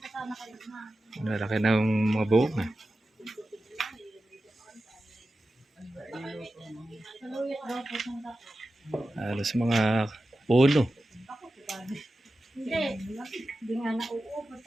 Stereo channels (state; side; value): normal; both; correlation 0.93